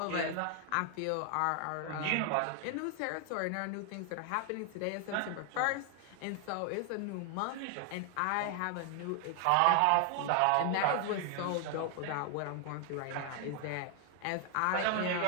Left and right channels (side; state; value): both; different; correlation 0.00